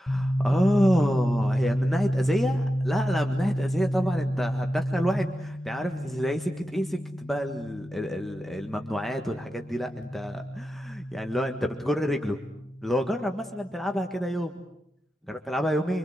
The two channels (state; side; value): normal; both; correlation 0.91